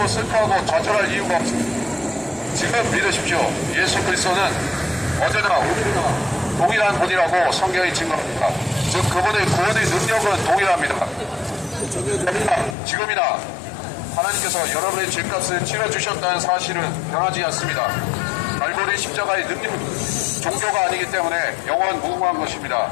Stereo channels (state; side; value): drops out; right; at 12.8 s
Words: 슬퍼하고 좌절할 이유가 없습니다. 지금 믿으십시오. 예수 그리스도는 어제나 오늘이나 동일한 분이라고 성경이 증거합니다. 즉 그분의 구원의 능력은 동일합니다. 지금이나 하나님께서 여러분의 죄값을 치러주셨다는 사실은 변하지 않습니다. 갈보리 십자가의 능력은 종교가 아니기 때문에 영원 무궁한 것입니다.